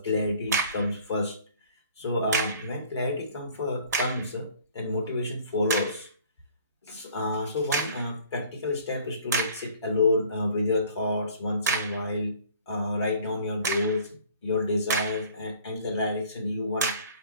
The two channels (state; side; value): inverted; both; correlation -0.52